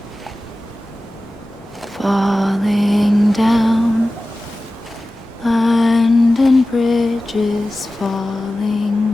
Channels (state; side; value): normal; both; correlation 0.95